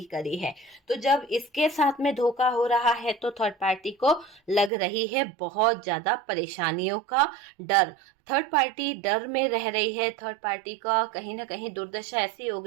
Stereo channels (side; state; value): left; drops out; at 4.7 s